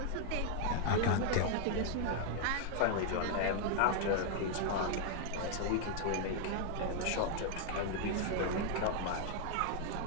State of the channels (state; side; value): different; both; correlation 0.00